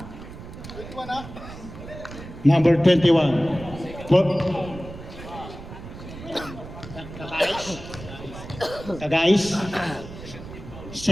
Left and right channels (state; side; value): noise; right; rumble, 13 dB below the sound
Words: Number 21. Tagais.